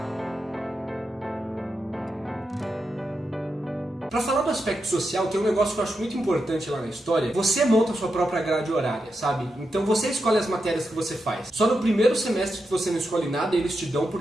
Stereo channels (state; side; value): normal; both; correlation 0.86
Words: Para falar do aspecto social, tem um negócio que eu acho muito importante lá na História. Você monta a sua própria grade horária, sabe? Então você escolhe as matérias que você faz. Só no primeiro semestre que você não escolhe nada, eles te dão